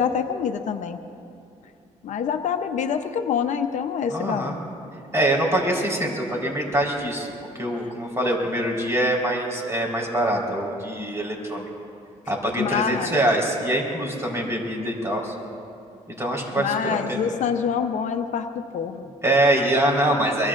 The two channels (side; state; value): both; normal; correlation 0.46